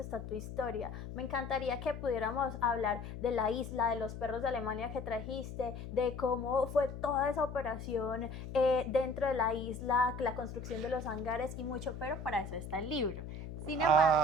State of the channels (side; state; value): left; noise; hum, 9 dB below the sound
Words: tu historia. Me encantaría que pudiéramos hablar de la isla, de los perros de Alemania que trajiste, de cómo fue toda esa operación dentro de la isla, la construcción de los hangares y mucho, pero para eso está el libro. Sin